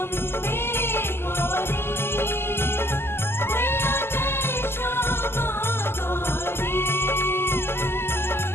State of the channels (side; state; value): right; late; 0.12 ms